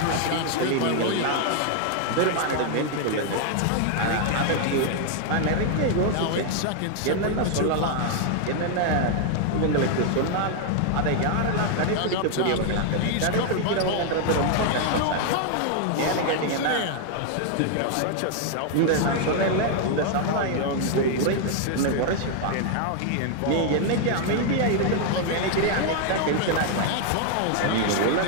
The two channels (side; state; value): both; different; correlation 0.00